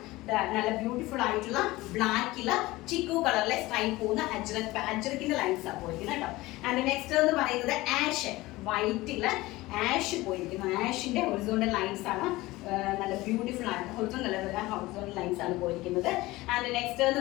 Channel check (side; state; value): right; quieter; 19.4 dB